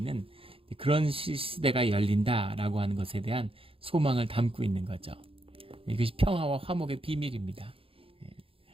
그런 시대가 열린다라고 하는 것에 대한 소망을 담고 있는 거죠. 이것이 평화와 화목의 비밀입니다.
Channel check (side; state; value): left; late; 0.27 ms